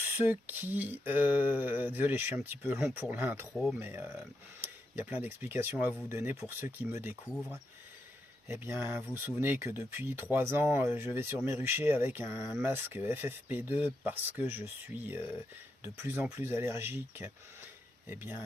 qui... désolé, je suis un petit peu long pour l'intro, mais il y a plein d'explications à vous donner pour ceux qui me découvrent. Eh bien, vous vous souvenez que depuis 3 ans, je vais sur mes ruchers avec un masque FFP2 parce que je suis de plus en plus allergique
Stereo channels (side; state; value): both; normal; correlation 0.84